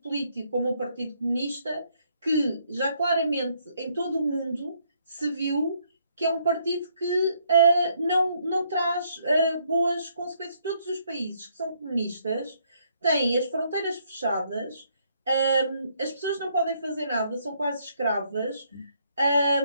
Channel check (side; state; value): both; inverted; correlation -0.70